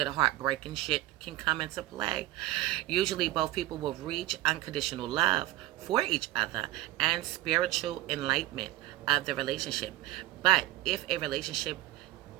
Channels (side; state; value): left; quieter; 16.4 dB